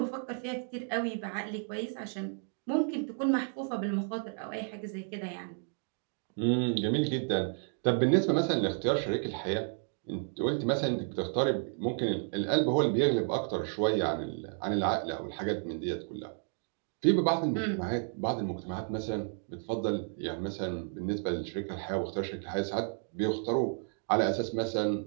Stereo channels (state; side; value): silent; left; 56 dB below the other